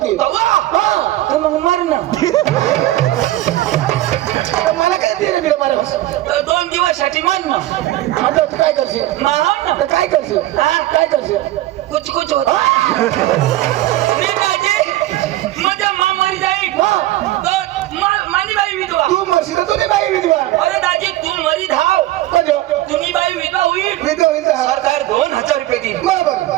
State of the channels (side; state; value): left; quieter; 15.7 dB